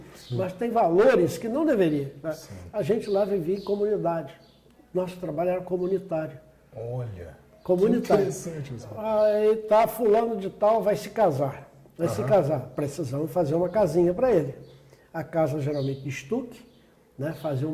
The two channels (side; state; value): both; identical; correlation 1.00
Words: mas tem valores que não deveria. Né? A gente lá vivia em comunidade. Nosso trabalho era comunitário. Olha, comunitário. Que interessante. Aí tá, fulano de tal vai se casar. Precisamos fazer uma casinha para ele. A casa geralmente de estuque, né? Fazia